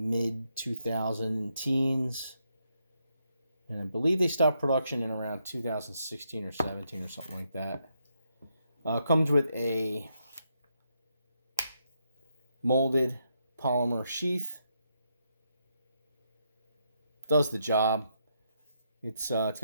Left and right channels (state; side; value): inverted; both; correlation -0.79